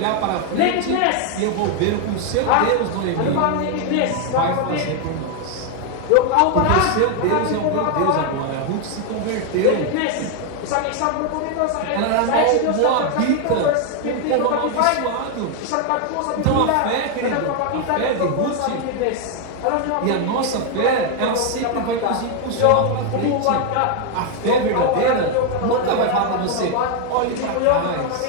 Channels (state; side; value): different; both; correlation 0.01